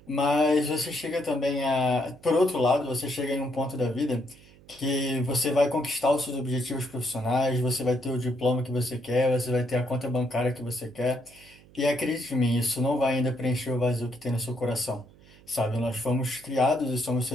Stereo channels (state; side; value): noise; right; hum, 25 dB below the sound